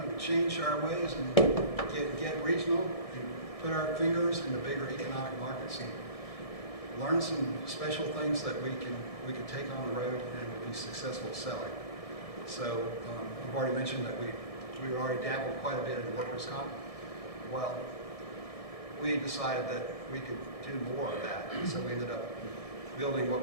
to change our ways and get regional and put our fingers in the bigger economic markets and learn some special things that we can take on the road and will be successful selling. So I've already mentioned that we already dabbled quite a bit in workers' comp. Well, we decided that we could do more of that, so we ended up building what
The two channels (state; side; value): late; right; 1.7 ms